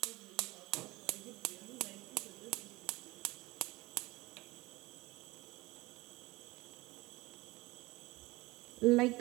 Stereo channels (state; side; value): quieter; left; 21.5 dB